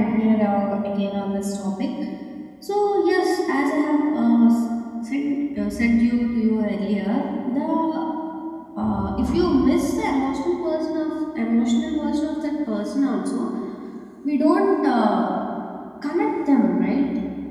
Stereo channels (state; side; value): identical; both; correlation 1.00